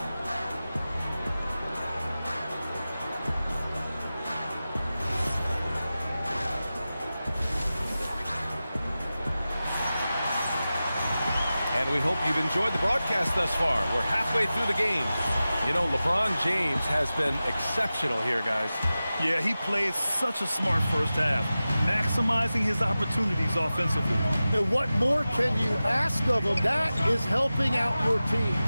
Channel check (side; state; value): both; inverted; correlation -0.95